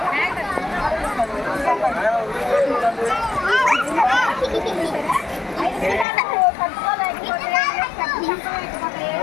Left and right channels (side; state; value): right; drops out; at 6.1 s